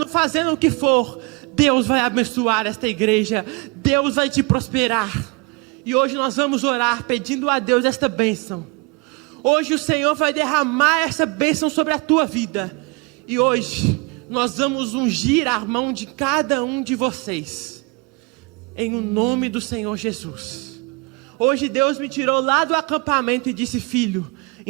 fazendo o que for, Deus vai abençoar esta igreja. Deus vai te prosperar. E hoje nós vamos orar pedindo a Deus esta bênção. Hoje o Senhor vai derramar essa bênção sobre a tua vida. E hoje nós vamos ungir a mão de cada um de vocês. Em o nome do Senhor Jesus. Hoje Deus me tirou lá do acampamento e disse: filho,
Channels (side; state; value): left; quieter; 28.6 dB